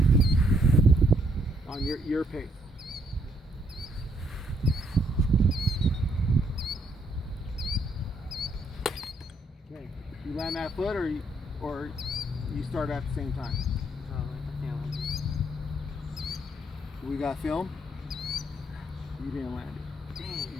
On your pace. Okay. You land that foot, or you start at the same time. I can't land it. We got film. You didn't land it. Dang.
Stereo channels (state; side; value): normal; both; correlation 0.70